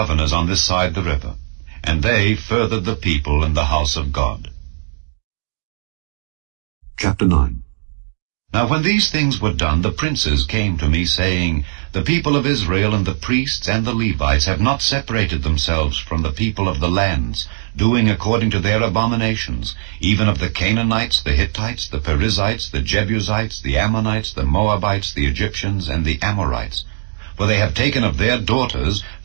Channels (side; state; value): left; silent; digital silence